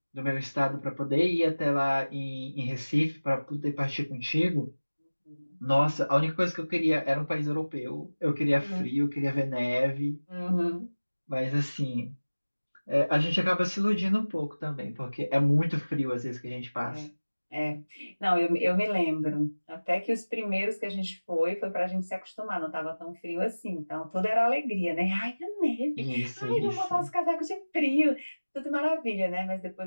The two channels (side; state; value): both; inverted; correlation -1.00